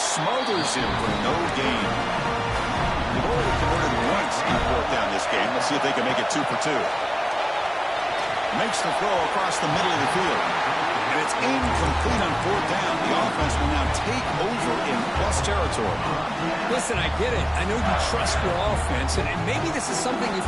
smothers him for no gain. They've already converted once on 4th down this game. Let's see if they can make it 2 for 2. Makes the throw across the middle of the field. And it's incomplete on 4th down. The offense will now take over in plus territory. Listen, I get it. I know you trust your offense, and maybe this is something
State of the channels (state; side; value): identical; both; correlation 1.00